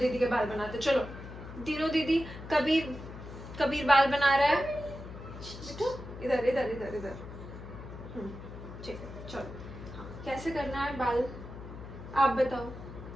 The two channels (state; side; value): noise; left; hum, 12 dB below the sound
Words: के बाल बनाते, चलो दीनू दीदी। कबीर कबीर बाल बना रहा है बेटू, इधर इधर इधर इधर। ठीक है चलो। हाँ कैसे करना है बाल, आप बताओ